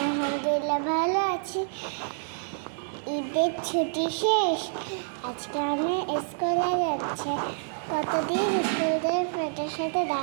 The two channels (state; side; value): silent; left; 60 dB below the other